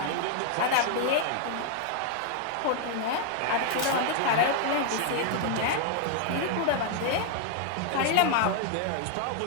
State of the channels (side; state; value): both; different; correlation -0.01